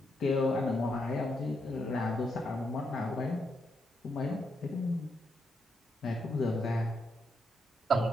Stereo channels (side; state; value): both; normal; correlation 0.80